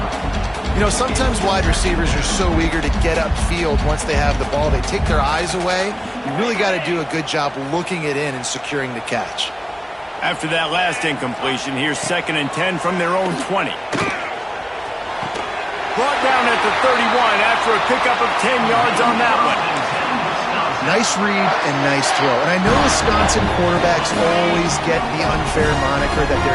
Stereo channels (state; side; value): identical; both; correlation 1.00